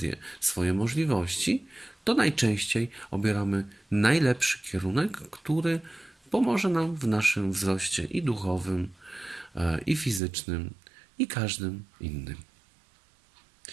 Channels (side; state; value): left; drops out; at 10.2 s